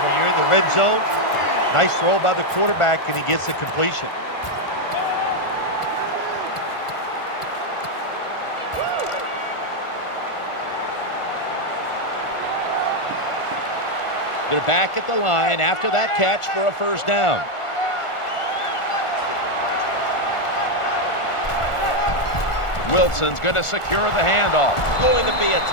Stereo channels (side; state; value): right; late; 1.4 ms